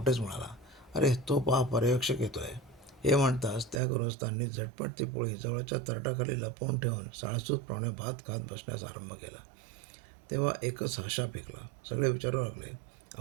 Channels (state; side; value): drops out; left; at 3.8 s